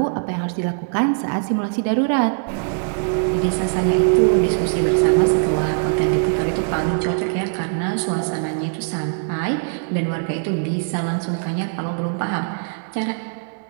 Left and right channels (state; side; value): silent; left; digital silence